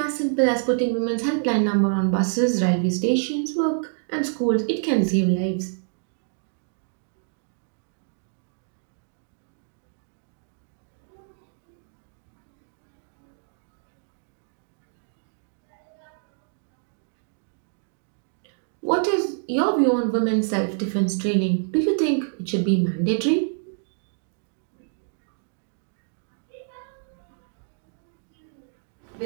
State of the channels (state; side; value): silent; left; digital silence